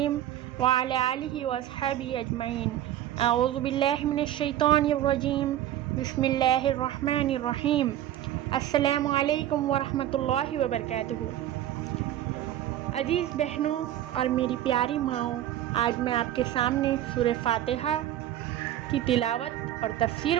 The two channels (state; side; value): quieter; left; 12.5 dB